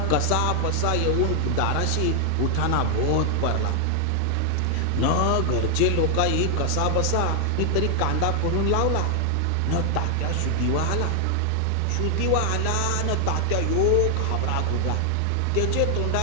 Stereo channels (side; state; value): both; different; correlation 0.00